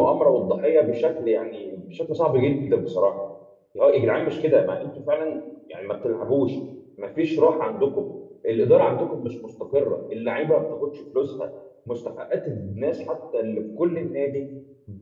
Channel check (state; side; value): identical; both; correlation 1.00